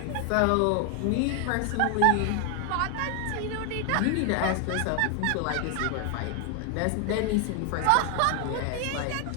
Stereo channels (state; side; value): different; both; correlation 0.00